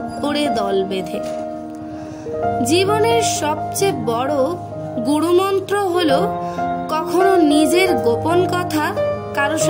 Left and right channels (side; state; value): both; identical; correlation 1.00